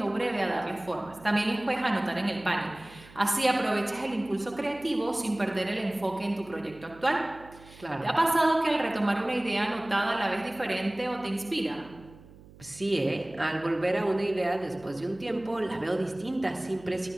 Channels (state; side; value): noise; right; hum, 21 dB below the sound